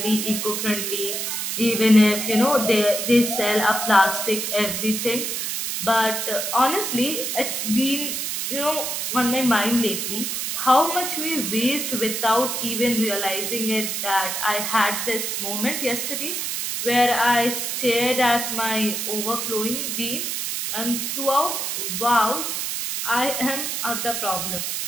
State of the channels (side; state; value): right; noise; hiss, 2 dB below the sound